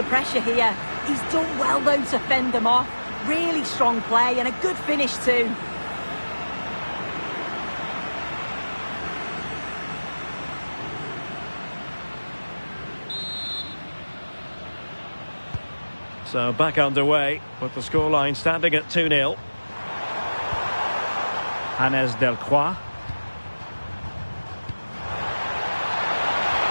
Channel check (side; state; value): both; inverted; correlation -1.00